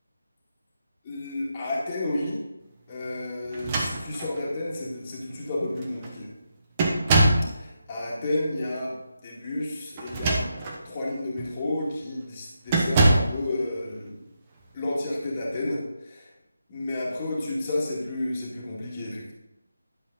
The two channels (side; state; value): both; inverted; correlation -0.81